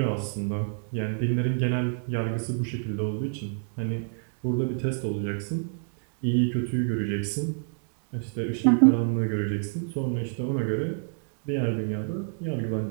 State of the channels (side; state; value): left; silent; digital silence